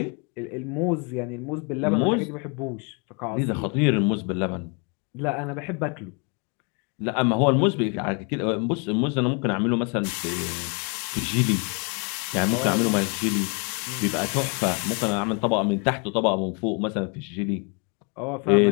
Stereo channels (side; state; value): right; quieter; 34.5 dB